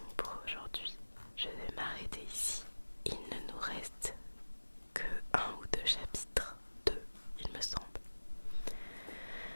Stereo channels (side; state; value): both; inverted; correlation -1.00